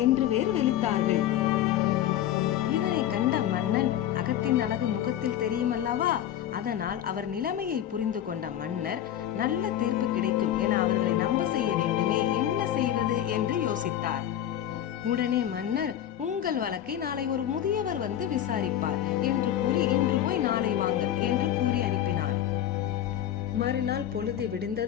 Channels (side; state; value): right; quieter; 11.3 dB